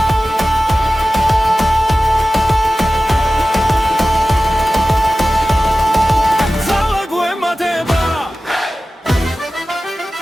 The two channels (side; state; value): both; normal; correlation 0.95